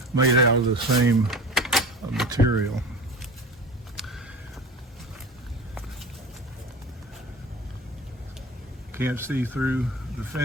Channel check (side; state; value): both; normal; correlation 0.35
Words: made out of the same material. Can't see through the